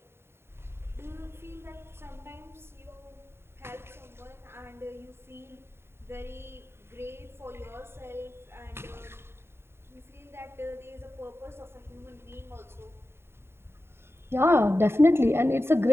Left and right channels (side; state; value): left; late; 0.12 ms